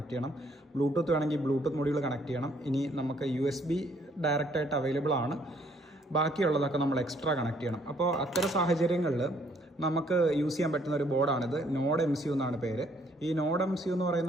ചെയ്യണം, ബ്ലൂടൂത്ത് വേണമെങ്കിൽ ബ്ലൂടൂത്ത് മൊഡ്യൂൾ കണക്ട് ചെയ്യണം. ഇനി നമുക്ക് USB ഡയറക്റ്റായിട്ട് അവൈലബിൾ ആണ്, ബാക്കിയുള്ളതൊക്കെ നമ്മൾ എക്സ്ട്രാ കണക്ട് ചെയ്യണം. അപ്പോൾ അത്തരം സാഹചര്യങ്ങളിൽ നമുക്ക് യൂസ് ചെയ്യാൻ പറ്റുന്ന ഒരു ബോർഡാണിത്. നോഡ് MCU എന്നാണ് പേര്. ഈ നോഡ് MCU എന്ന്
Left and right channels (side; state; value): both; normal; correlation 0.65